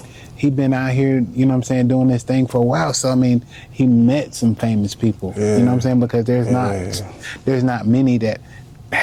he been out here, you know what I'm saying, doing this thing for a while. So I mean, he met some famous people. Yeah. You know what I'm saying? Because there's not many that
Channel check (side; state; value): both; identical; correlation 1.00